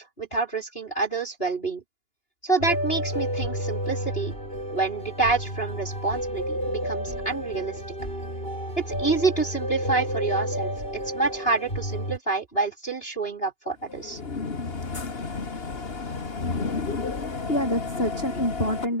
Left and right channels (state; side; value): late; right; 2.8 ms